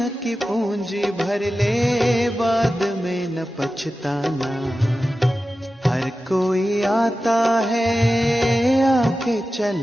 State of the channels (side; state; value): both; normal; correlation 0.93